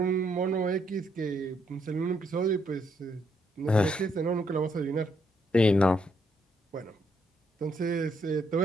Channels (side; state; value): both; normal; correlation 0.74